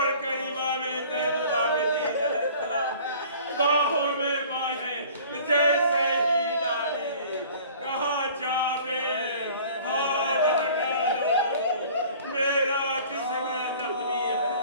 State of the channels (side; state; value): both; inverted; correlation -0.48